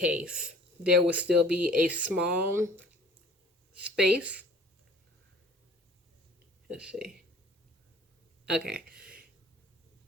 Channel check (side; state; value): both; normal; correlation 0.49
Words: there would still be a small space. Let's see. Okay.